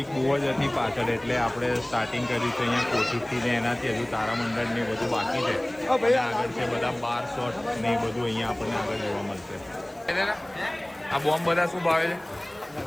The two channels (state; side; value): noise; left; hiss, 29 dB below the sound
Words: બહુ જ હતી પાછળ, એટલે આપણે સ્ટાર્ટિંગ કર્યું છે અહીંયા કોશિશથી ને એનાથી. હજુ તારામંડળ ને બધું બાકી છે, અને આગળ છે બધા બાર શોટ ને એ બધું અહીંયા આપણને આગળ જોવા મળશે. આ બોમ્બ બધા શું ભાવે છે?